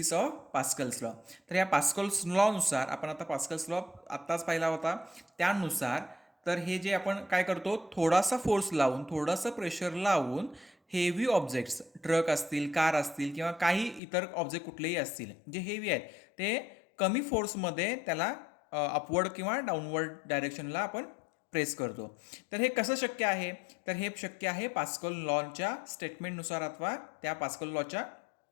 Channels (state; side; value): drops out; right; at 14.0 s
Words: of Pascal's law. तर या पास्कल्स लॉनुसार, आपण आता पास्कल्स लॉ आत्ताच पाहिला होता, त्यानुसार तर हे जे आपण काय करतो, थोडासा फोर्स लावून, थोडंसं प्रेशर लावून हेवी ऑब्जेक्ट्स, ट्रक असतील, कार असतील किंवा काही इतर ऑब्जेक्ट कुठलेही असतील जे हेवी आहेत, ते कमी फोर्समध्ये त्याला अपवर्ड किंवा डाऊनवर्ड डायरेक्शनला आपण प्रेस करतो. तर हे कसं शक्य आहे, तर हे शक्य आहे पास्कल लॉच्या स्टेटमेंटनुसार अथवा त्या पास्कल लॉच्या